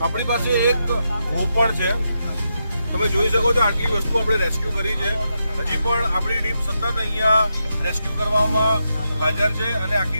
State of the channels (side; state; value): both; inverted; correlation -0.84